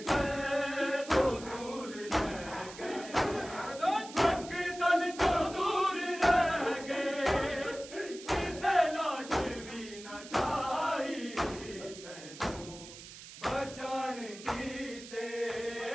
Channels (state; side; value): noise; right; hiss, 15 dB below the sound